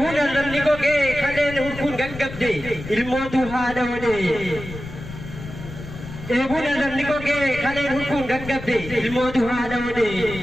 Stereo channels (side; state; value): left; noise; rumble, 12 dB below the sound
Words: arrabni gogee kaleen hurkuun gaggabde ilmootu haadha wadee. Eebuun arrabni gogee kaleen hurkuun gaggabde ilmootu haadha wadee.